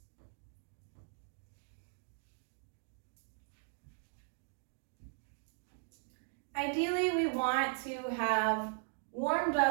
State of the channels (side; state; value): left; silent; 52 dB below the other